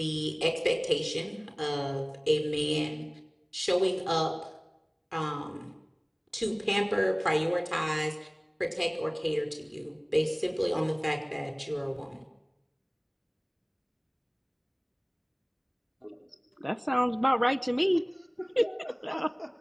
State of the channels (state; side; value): identical; both; correlation 1.00